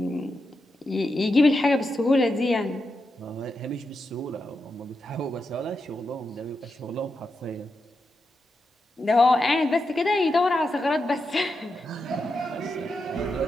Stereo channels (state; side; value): normal; both; correlation 0.87